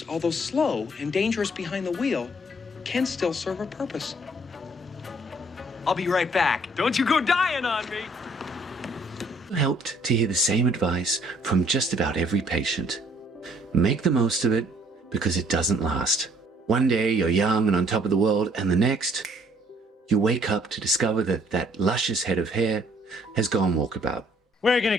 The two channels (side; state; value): both; normal; correlation 0.62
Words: although slow and dangerous behind the wheel, can still serve a purpose. I'll be right back. Don't you go dying on me. Helped to hear the same advice from just about every patient. Make the most of it, because it doesn't last. One day you're young and on top of the world, and the next, you wake up to discover that that luscious head of hair has gone walkabout. We're gonna